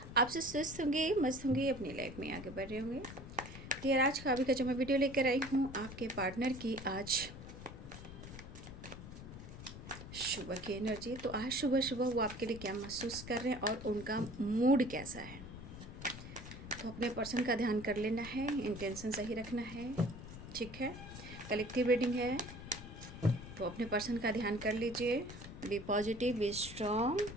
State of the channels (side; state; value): left; noise; rumble, 12 dB below the sound